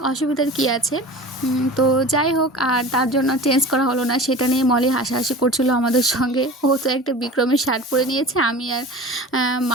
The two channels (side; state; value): both; normal; correlation 0.37